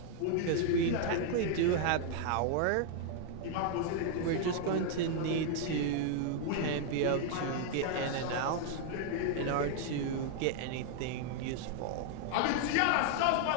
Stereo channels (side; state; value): both; different; correlation 0.00